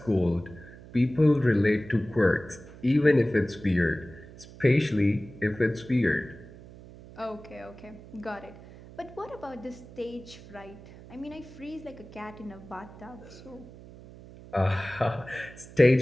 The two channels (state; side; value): noise; right; hum, 18 dB below the sound